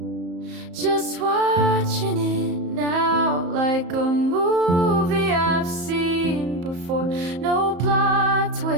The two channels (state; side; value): late; left; 34 ms